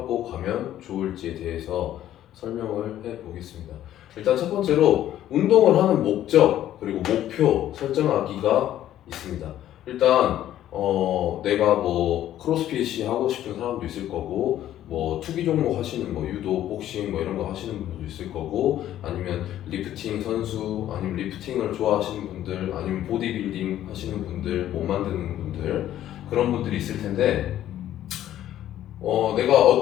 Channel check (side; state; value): right; quieter; 12.3 dB